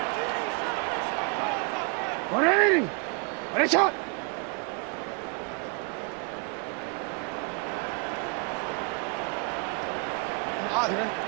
180. Finish it.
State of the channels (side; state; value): left; quieter; 35.0 dB